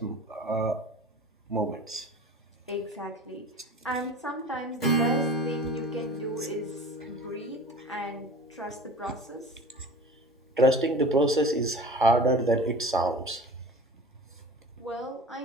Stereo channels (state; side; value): normal; both; correlation 0.39